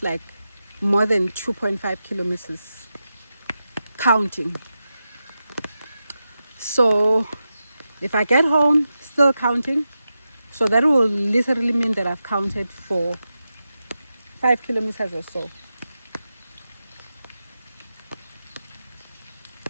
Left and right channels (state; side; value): inverted; both; correlation -0.90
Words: like more than 2.5 kilometers counting. So if I get home still counting, so that will literally mean that I've counted for 5 kilometers or so.